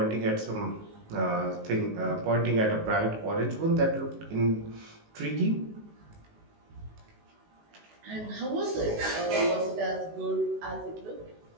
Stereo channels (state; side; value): late; left; 19 ms